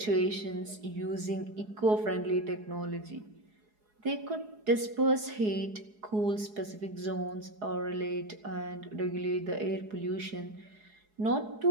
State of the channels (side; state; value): left; late; 4.8 ms